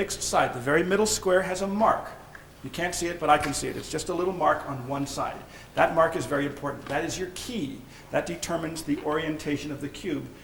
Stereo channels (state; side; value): identical; both; correlation 1.00